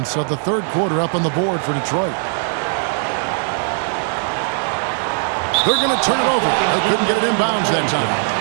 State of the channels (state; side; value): silent; left; 60 dB below the other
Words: of the third quarter up on the board for Detroit. They're going to turn it over. They couldn't get it inbounds that time.